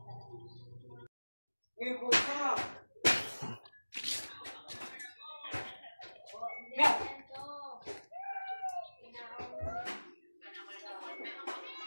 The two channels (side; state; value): both; inverted; correlation -1.00